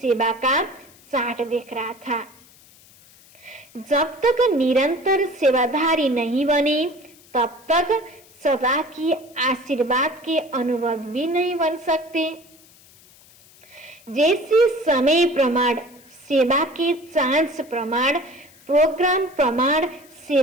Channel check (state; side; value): noise; left; hiss, 26 dB below the sound